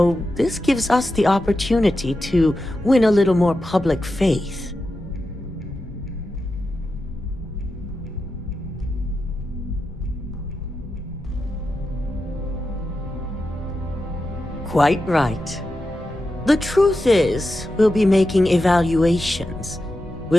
this gives us the opportunity to win a little more public faith. Quite right. The truth is, we'll be making evaluations.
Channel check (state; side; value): normal; both; correlation 0.90